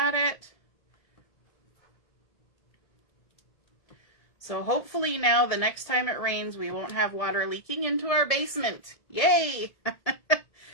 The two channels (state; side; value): late; right; 1.7 ms